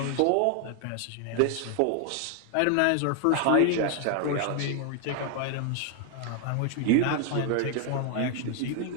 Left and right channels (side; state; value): both; different; correlation 0.01